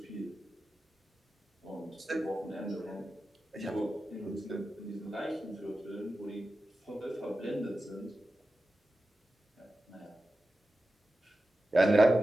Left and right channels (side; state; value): both; normal; correlation 0.93